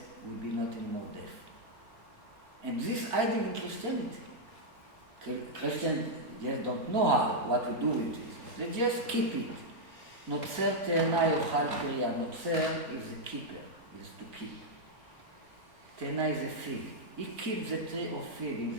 will be not anymore death. And this idea in Christianity. Christians just don't know what to do with this. They just keep it. Notzer te'ena yochal piriya. Notzer is a keeper, is to keep. Te'ena is a fig. He keeps the tree of fig. In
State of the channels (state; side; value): late; left; 3.9 ms